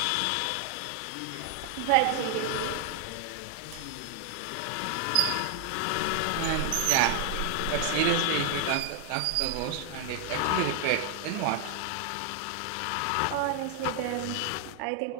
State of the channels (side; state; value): both; different; correlation 0.00